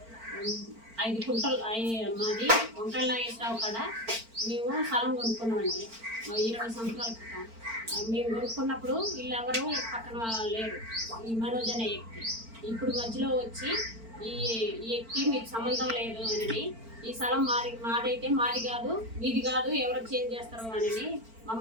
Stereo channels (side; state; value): left; late; 4.4 ms